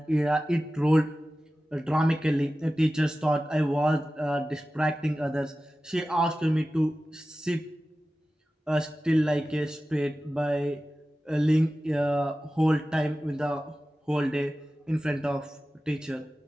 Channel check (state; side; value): normal; both; correlation 0.95